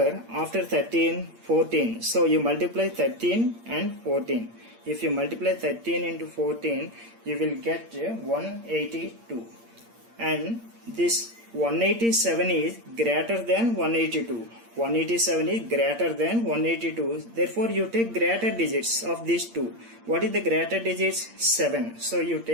after 13? 14. So you multiply 13 and 14. If you multiply 13 into 14, you will get 182. And this 187 is greater than 182. 187 is greater than 182. Therefore, you take greater digits of these two. What is the greater digits? 7. So, you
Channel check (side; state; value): left; late; 8.7 ms